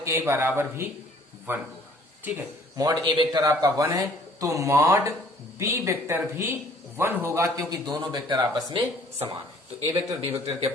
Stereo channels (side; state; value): both; normal; correlation 0.57